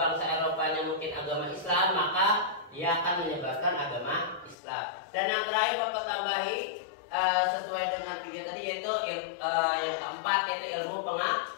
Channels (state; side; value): drops out; right; at 4.5 s